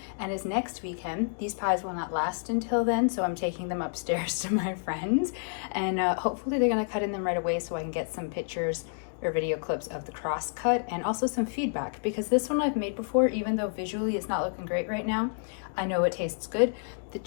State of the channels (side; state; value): right; silent; digital silence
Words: and is next weekend. These pies will not last until then, so I'm taking them upstairs to my friends, and hopefully they're gonna cut in them right away so I can get some pictures or video clips of the cross cut and also some feedback, because this one I've made before, even though visually it's not looking great right now. I know it tastes good. The